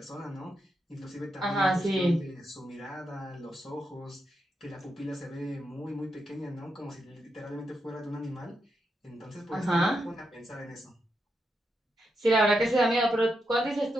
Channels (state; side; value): normal; both; correlation 0.84